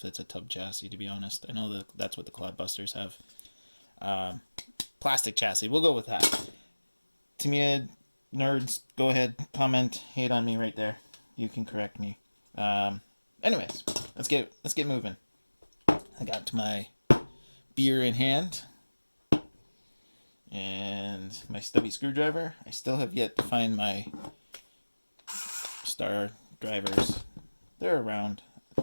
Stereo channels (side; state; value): both; inverted; correlation -1.00